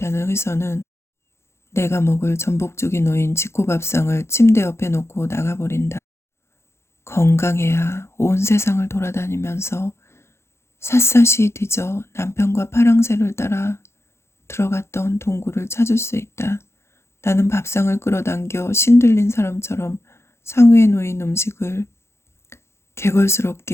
의사는 내가 먹을 전복죽이 놓인 지코밥상을 침대 옆에 놓고 나가버린다. 건강해야 온 세상을 돌아다니면서 샅샅이 뒤져 남편과 파랑새를 따라 들어갔던 동굴을 찾을 수 있다. 나는 밥상을 끌어당겨 신들린 사람처럼 상위에 놓인 음식을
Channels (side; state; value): right; late; 0.13 ms